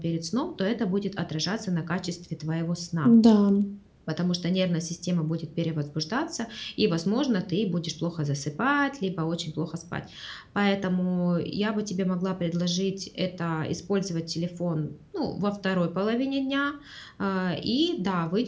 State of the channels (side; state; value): both; identical; correlation 1.00